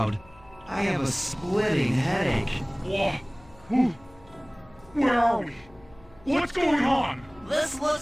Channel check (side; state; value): left; noise; hum, 26 dB below the sound